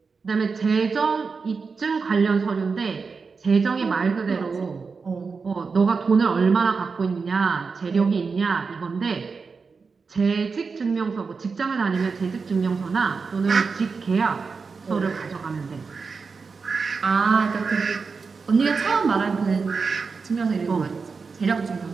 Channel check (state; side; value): quieter; left; 4.9 dB